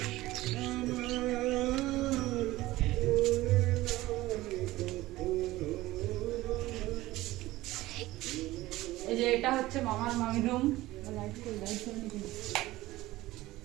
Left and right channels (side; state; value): left; quieter; 17.6 dB